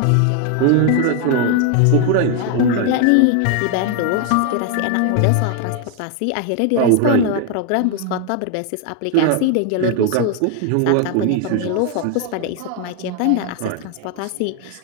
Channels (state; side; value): different; both; correlation 0.00